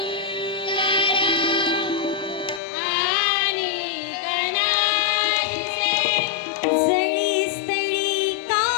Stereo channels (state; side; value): drops out; right; at 2.6 s